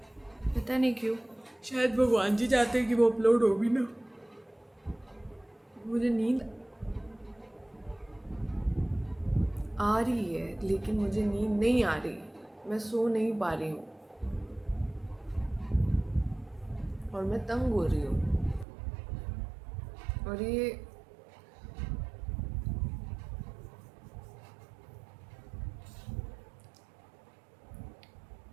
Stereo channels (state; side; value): drops out; left; at 18.7 s